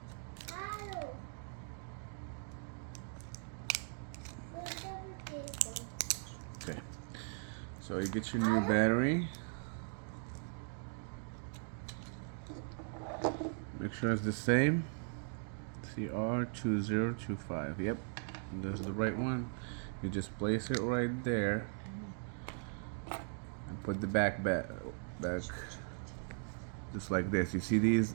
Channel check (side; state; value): left; silent; 52 dB below the other